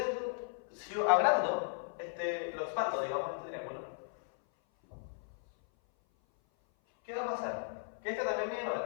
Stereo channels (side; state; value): right; silent; 54 dB below the other